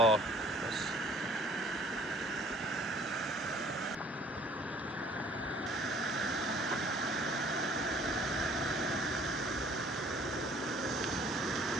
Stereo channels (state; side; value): normal; both; correlation 0.57